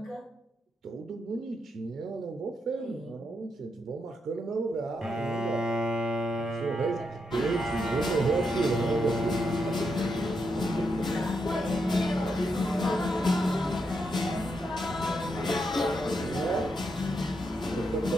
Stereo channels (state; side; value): normal; both; correlation 0.82